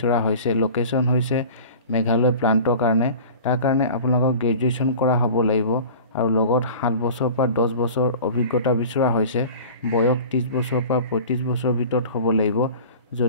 হৈছে। লোকেশ্যন হৈছে মেঘালয় প্লাণ্টৰ কাৰণে। তাৰ কাৰণে আপোনালোকক গ্ৰেজুৱেশ্যন কৰা হ'ব লাগিব আৰু লগত 7 বছৰ পৰা 10 বছৰ অভিজ্ঞতা বিচৰা হৈছে। বয়স 30 বছৰ পৰা 35 বছৰ ভিতৰত হ'ব লাগিব।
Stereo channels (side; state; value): both; inverted; correlation -0.39